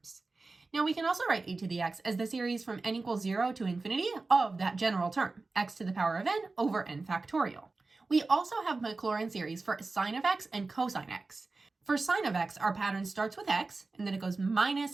Now we can also write e to the x as the series from n equals 0 to infinity of that general term, x to the power of n over n factorial. We also have Maclaurin series for sine of x and cosine x. For sine of x, our pattern starts with x, and then it goes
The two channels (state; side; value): quieter; left; 3.7 dB